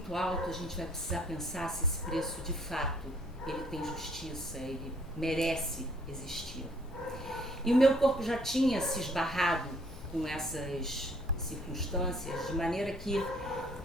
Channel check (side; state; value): both; normal; correlation 0.63